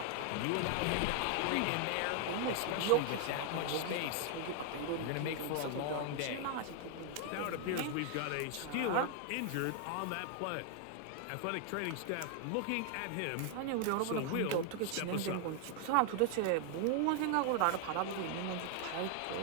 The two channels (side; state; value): both; different; correlation 0.00